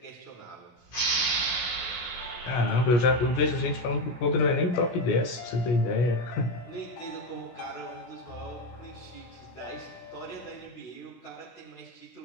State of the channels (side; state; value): right; late; 16 ms